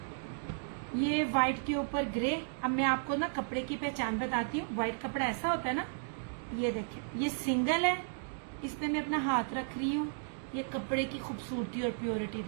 ये व्हाइट के ऊपर ग्रे। अब मैं आपको ना कपड़े की पहचान बताती हूँ। व्हाइट कपड़ा ऐसा होता है ना, ये देखें, ये सिंगल है, इसमें मैं अपना हाथ रख रही हूँ। ये कपड़े की खूबसूरती और प्योरिटी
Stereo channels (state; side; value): silent; left; digital silence